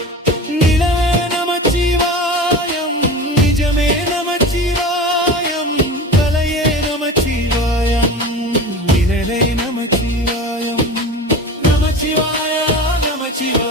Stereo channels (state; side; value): normal; both; correlation 0.32